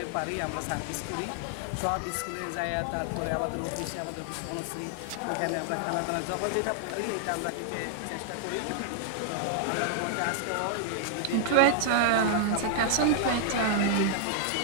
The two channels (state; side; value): different; both; correlation 0.00